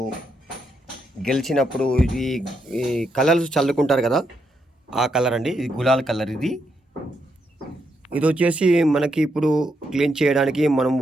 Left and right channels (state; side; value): normal; both; correlation 0.80